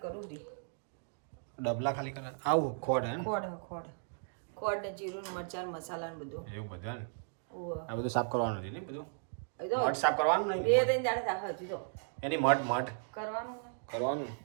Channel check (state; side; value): silent; left; digital silence